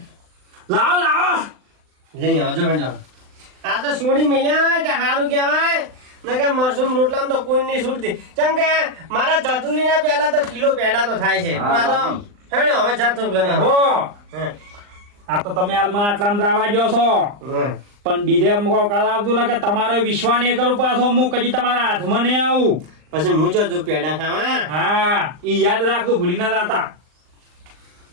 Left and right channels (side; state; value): left; late; 39 ms